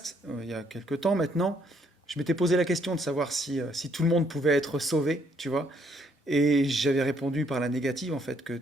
il y a quelques temps maintenant, je m'étais posé la question de savoir si tout le monde pouvait être sauvé, tu vois. Et j'avais répondu par la négative, en fait, que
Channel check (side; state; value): both; normal; correlation 0.69